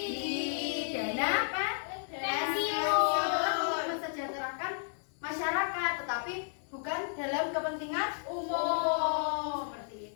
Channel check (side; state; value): right; silent; digital silence